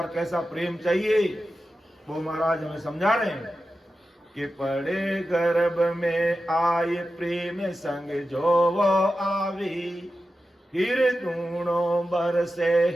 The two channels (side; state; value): both; normal; correlation 0.92